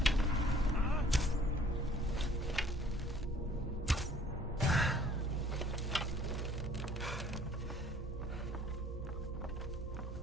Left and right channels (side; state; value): both; normal; correlation 0.55